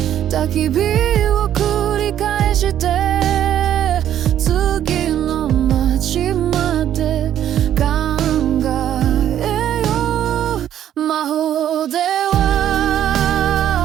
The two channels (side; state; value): left; quieter; 10.8 dB